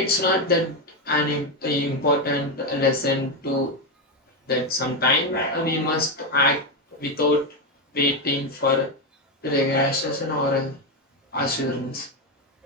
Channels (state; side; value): normal; both; correlation 0.09